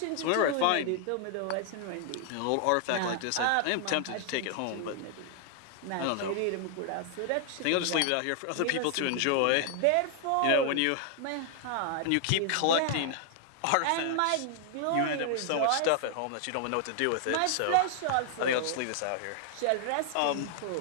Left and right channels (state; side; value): different; both; correlation 0.00